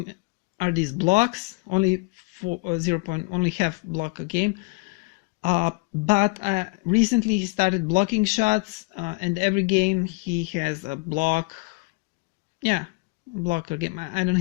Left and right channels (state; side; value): quieter; right; 27.5 dB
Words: are these blocks. Only only half block a game. But recently he started blocking shots, and every game he has a block. Yeah, block a game. I don't